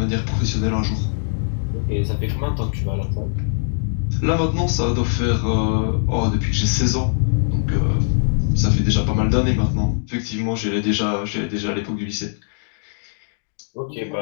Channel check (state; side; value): silent; right; digital silence